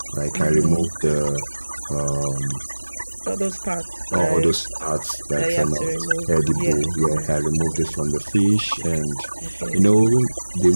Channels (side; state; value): both; inverted; correlation -1.00